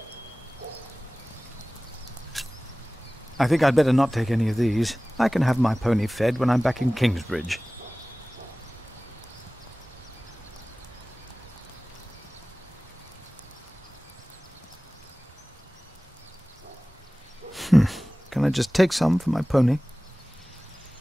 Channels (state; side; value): normal; both; correlation 0.98